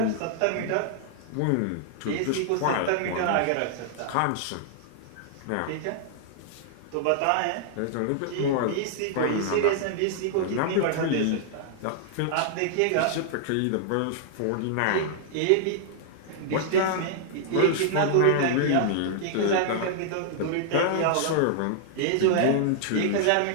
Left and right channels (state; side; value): different; both; correlation -0.01